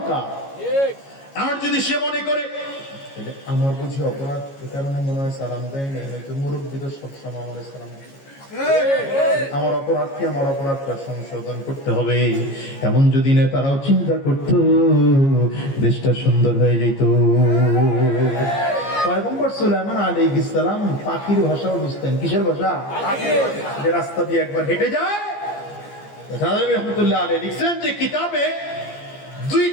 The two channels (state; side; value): late; right; 15 ms